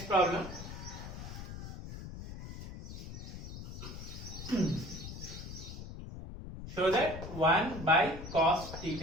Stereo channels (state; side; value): noise; left; rumble, 10 dB below the sound